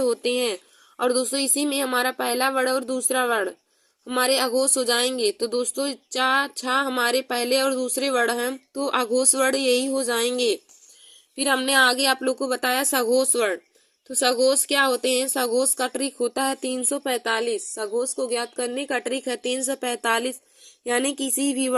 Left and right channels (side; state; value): both; identical; correlation 1.00